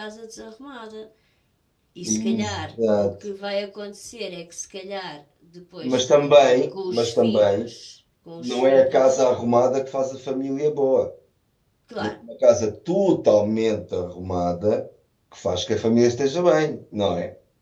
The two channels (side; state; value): both; identical; correlation 1.00